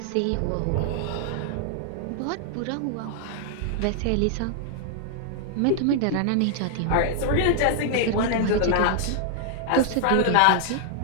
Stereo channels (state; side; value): different; both; correlation -0.01